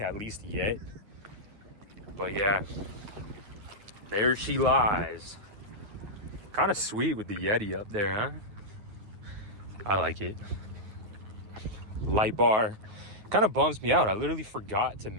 at least yet. But yeah, there she lies. Kind of sweet with the Yeti up there, huh? I like it. Light bar. Kind of bums me out. I literally forgot to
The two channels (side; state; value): left; late; 9.5 ms